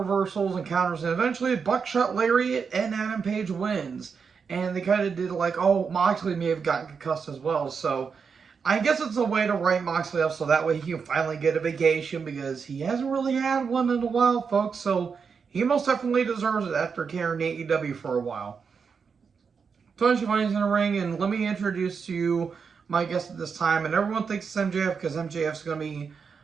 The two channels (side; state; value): left; quieter; 5.9 dB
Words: and counters, and eventually Buckshot Lariat and Adam Page wins. And they kind of did like, oh, Moxley may have gotten concussed as well, so... I guess it's a way to write Moxley up so that way he can finally get a vacation because he hasn't really had one in a while, folks. So he most definitely deserves it after carrying AEW for a while. Tony Schiavone's in the ring, and let me introduce to you my guest at this time. And everyone thinks it's MJF because MJF's going to be